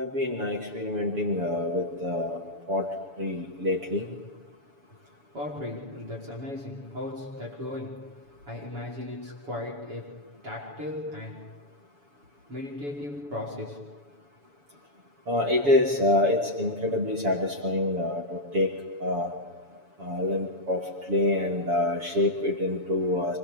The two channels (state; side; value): late; left; 7.0 ms